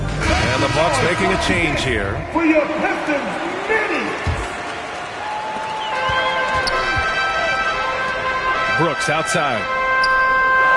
And the Bucks making a change here. For your Pistons, Minnie. Brooks outside.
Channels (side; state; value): both; identical; correlation 1.00